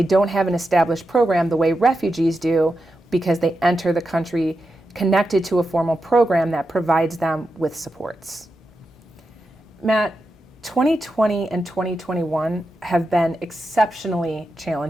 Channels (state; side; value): normal; both; correlation 0.89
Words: don't have an established program the way refugees do because they enter the country connected to a formal program that provides them with supports. Matt, 2020 and 2021 have been exceptionally